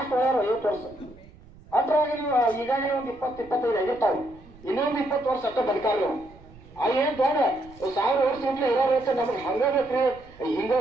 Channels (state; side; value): noise; right; rumble, 23 dB below the sound